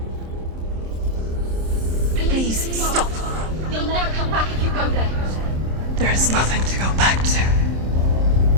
Please stop. You'll never come back if you go there. There is nothing to go back to.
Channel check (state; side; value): late; left; 26 ms